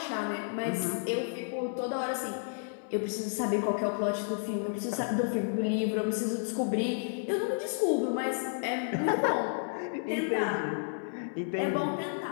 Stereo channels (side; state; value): right; silent; 57 dB below the other